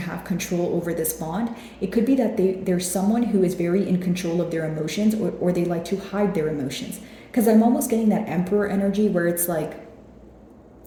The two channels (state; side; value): identical; both; correlation 1.00